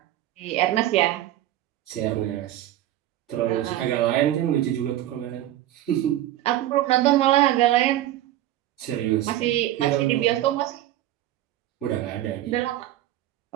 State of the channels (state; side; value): quieter; left; 13.8 dB